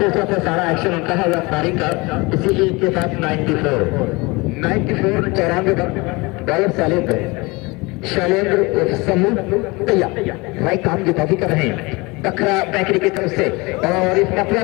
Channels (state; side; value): quieter; right; 25.0 dB